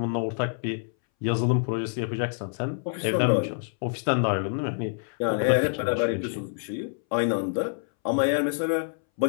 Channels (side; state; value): right; silent; 60 dB below the other